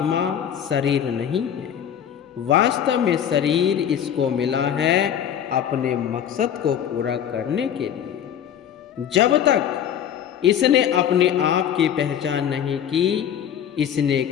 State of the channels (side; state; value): right; quieter; 9.4 dB